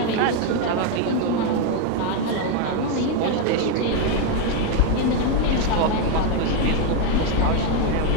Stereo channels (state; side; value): different; both; correlation 0.02